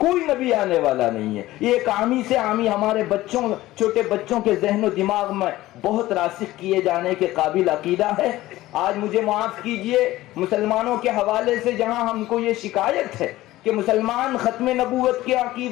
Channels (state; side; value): quieter; right; 16.6 dB